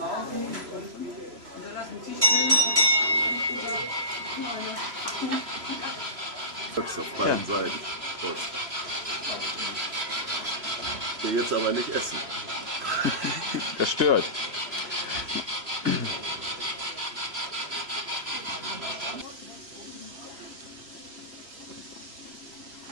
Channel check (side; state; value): left; late; 3.0 ms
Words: Auf beiden Seiten. Hier jetzt aber nicht essen. Das stört.